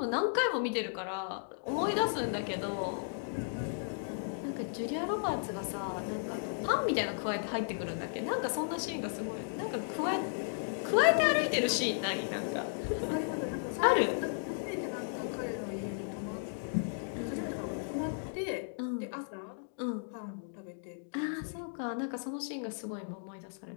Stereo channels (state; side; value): silent; right; digital silence